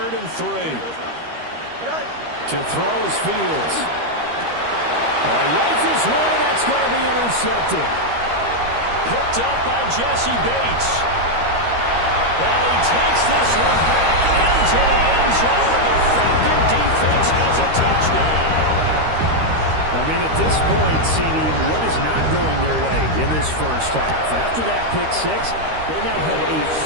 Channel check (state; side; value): late; left; 13 ms